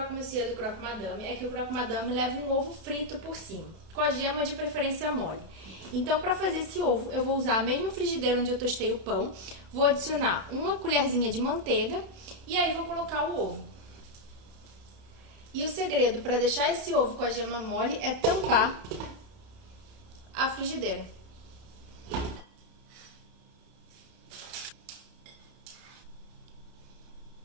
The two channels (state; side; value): late; left; 31 ms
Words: monsieur do croque madame é que o croque madame leva um ovo frito por cima, com a gema de preferência mole. Então, para fazer esse ovo, eu vou usar a mesma frigideira onde eu tostei o pão, vou adicionar uma colherzinha de manteiga e aí vou colocar o ovo. E o segredo para deixar esse ovo com a gema mole é tampar a frigideira.